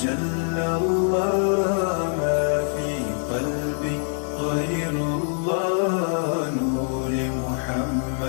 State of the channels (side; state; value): right; silent; digital silence